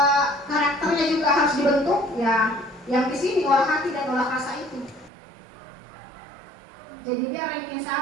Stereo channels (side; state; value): left; drops out; at 5.1 s